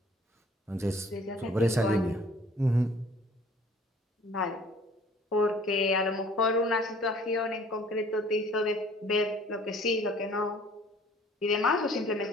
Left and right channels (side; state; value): both; normal; correlation 0.53